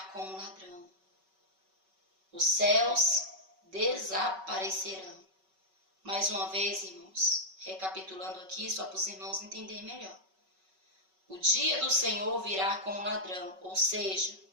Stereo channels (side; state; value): left; late; 5.3 ms